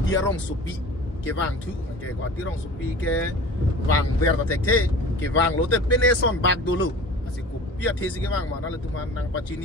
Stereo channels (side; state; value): both; normal; correlation 0.40